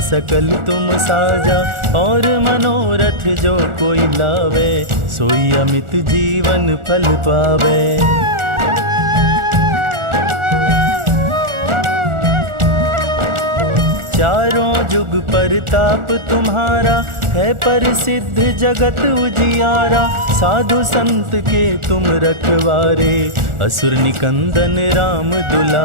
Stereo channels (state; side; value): late; left; 1.4 ms